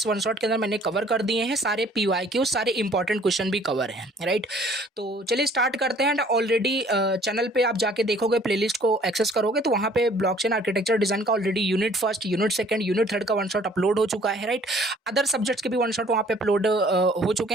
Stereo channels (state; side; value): normal; both; correlation 0.56